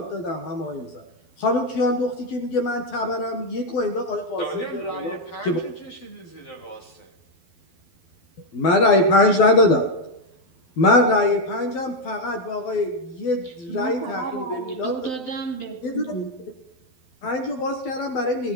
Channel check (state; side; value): late; right; 12 ms